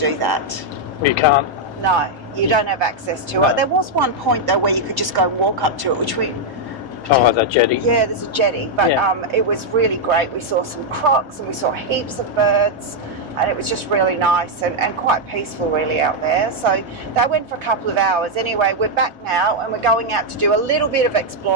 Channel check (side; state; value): both; normal; correlation -0.01